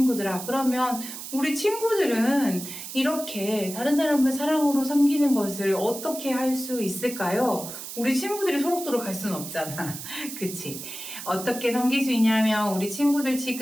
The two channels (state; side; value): noise; right; hiss, 10 dB below the sound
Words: 그러면 우리 친구들은 이렇게 다른 사람을 사랑으로 섬기는 것을 어떻게 할 수 있을까요? 우리 친구들이 소록도록 갈 수는 없잖아. 그치? 어떻게 섬길 수 있냐면, 우리 친구들